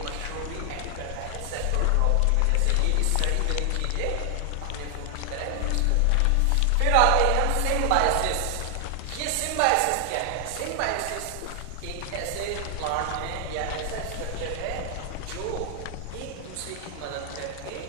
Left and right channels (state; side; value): different; both; correlation 0.00